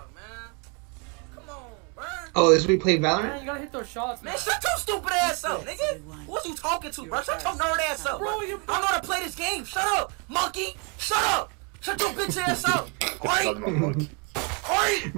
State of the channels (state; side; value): quieter; left; 34.9 dB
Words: Oh, this we played Valorant. Man, you gotta hit those shots, man. Shut your stupid ass up, nigga. Who's you talking to, bro? Shut your nerd ass up, bro. I know how to play this game. Shut up, monkey. Shut up. Shut your bitch ass up. Alright.